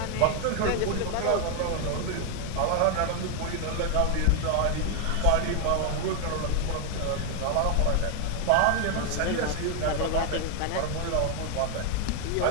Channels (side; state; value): both; different; correlation 0.00